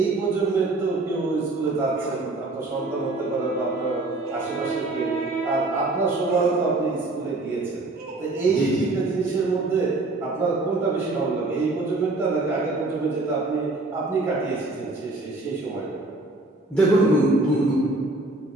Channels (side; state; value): left; quieter; 3.0 dB